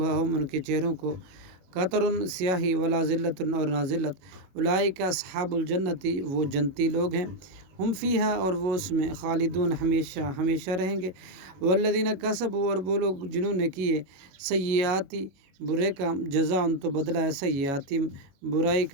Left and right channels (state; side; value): late; left; 22 ms